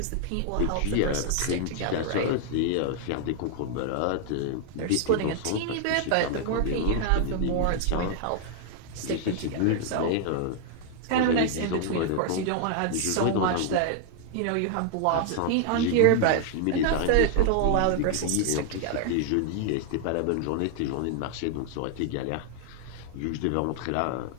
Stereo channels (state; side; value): different; both; correlation 0.00